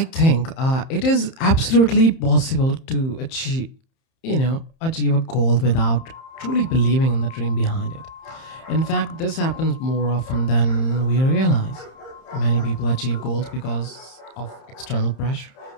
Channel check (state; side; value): late; right; 30 ms